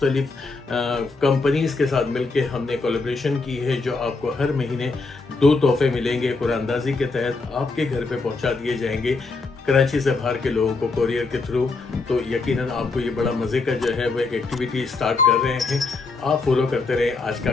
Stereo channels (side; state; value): right; quieter; 3.9 dB